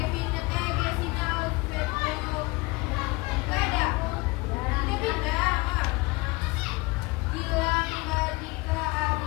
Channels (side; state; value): right; quieter; 24.1 dB